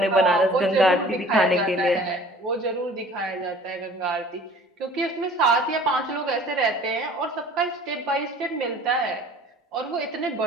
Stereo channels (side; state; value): both; normal; correlation 0.48